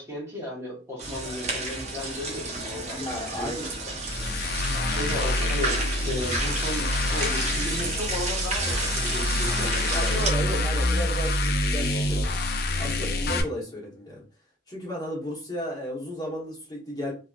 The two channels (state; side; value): normal; both; correlation 0.49